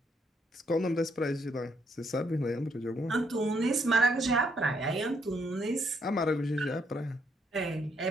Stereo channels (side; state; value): both; normal; correlation 0.72